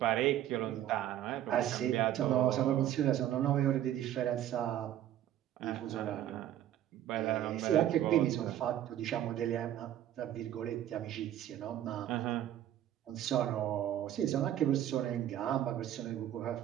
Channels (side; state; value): left; quieter; 11.8 dB